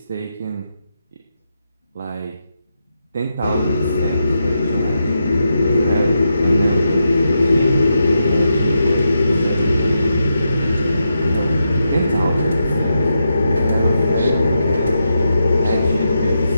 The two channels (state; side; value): inverted; both; correlation -0.86